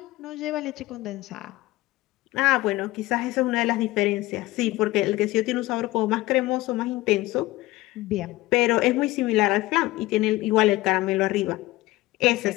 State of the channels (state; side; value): quieter; right; 18.5 dB